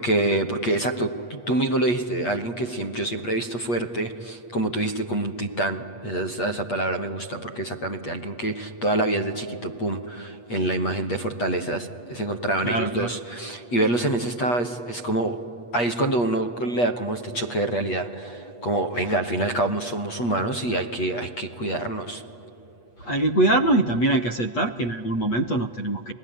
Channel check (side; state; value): right; late; 8.4 ms